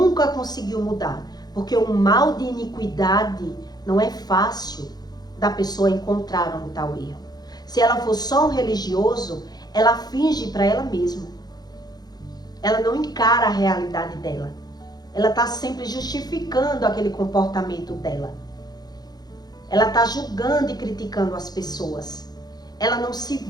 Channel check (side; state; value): right; late; 0.19 ms